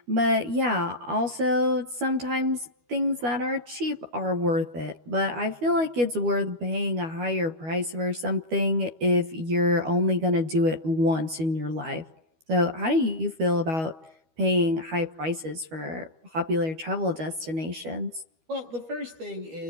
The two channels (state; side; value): late; left; 12 ms